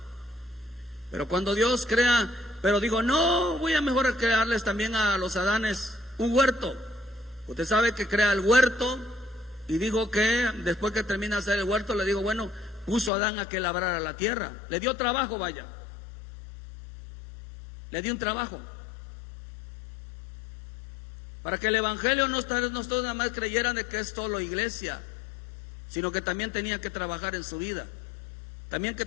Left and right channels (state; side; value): drops out; right; at 13.1 s